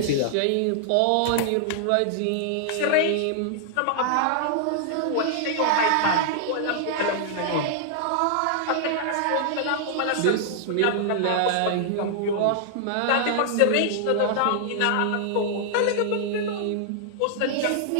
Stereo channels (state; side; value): different; both; correlation -0.01